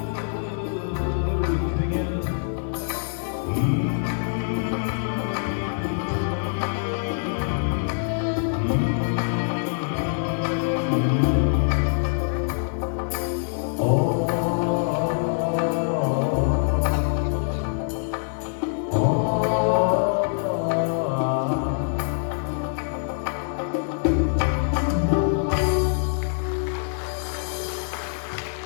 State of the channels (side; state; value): right; silent; 62 dB below the other